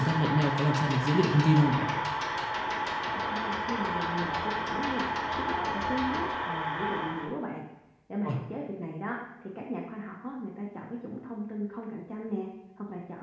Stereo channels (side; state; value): both; identical; correlation 1.00